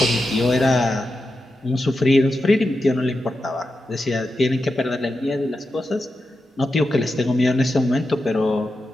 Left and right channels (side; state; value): both; normal; correlation 0.89